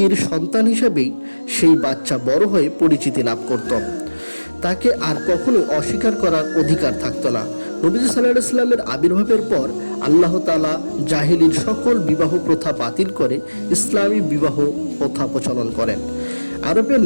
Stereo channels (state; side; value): inverted; both; correlation -1.00